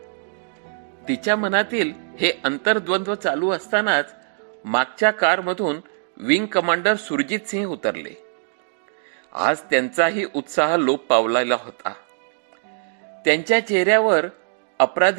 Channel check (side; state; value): left; silent; digital silence